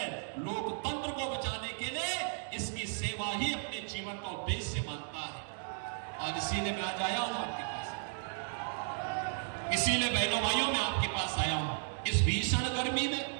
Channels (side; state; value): left; silent; digital silence